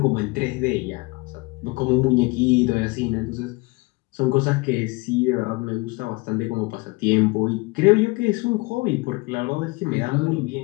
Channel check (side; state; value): right; quieter; 25.3 dB